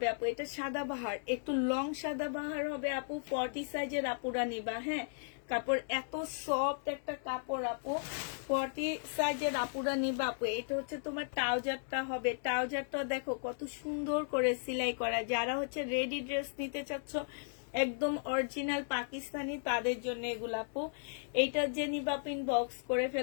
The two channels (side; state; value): right; silent; 54 dB below the other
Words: আপু, এটা সাদা বাহার, একটু লং সাদা বাহার হবে আপু। 40 সাইজের আপুরা নিবা, হ্যাঁ কাপড় এত সফট একটা কাপড় আপু, 40 সাইজের আপুরা নিবা আপু। এটা হচ্ছে তোমার ট্রাউজারটা হবে, ট্রাউজারটা দেখো কত সুন্দর করে সেলাই করা। যারা হচ্ছে রেডি ড্রেস নিতে চাচ্ছ একদম অরিজিনাল পাকিস্তানি তাদের জন্য এগুলো আপু। এইটা যে নিবা আপু ইনবক্স করে